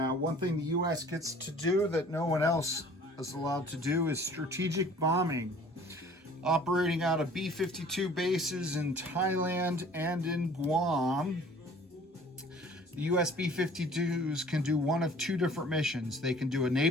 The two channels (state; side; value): normal; both; correlation 0.50